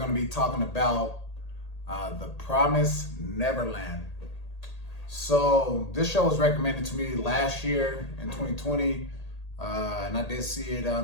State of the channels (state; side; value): late; right; 1.8 ms